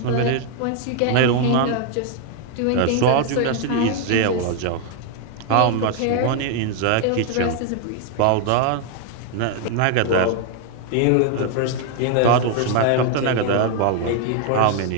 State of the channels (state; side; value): different; both; correlation 0.00